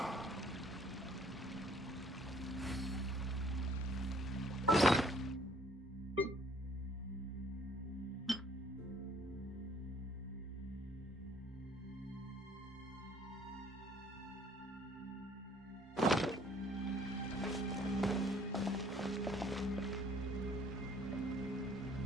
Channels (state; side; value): normal; both; correlation 0.59